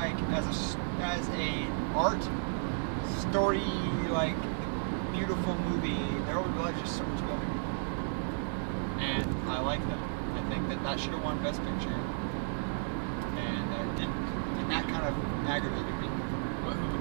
as a art story, like beautiful movie, There Will Be Blood is just so much better. And I like that. I think that should have won Best Picture, and it didn't. And that kind of aggravated me.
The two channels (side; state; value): left; silent; 56 dB below the other